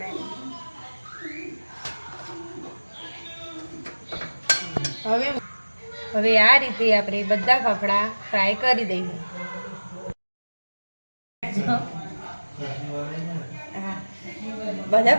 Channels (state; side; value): inverted; both; correlation -1.00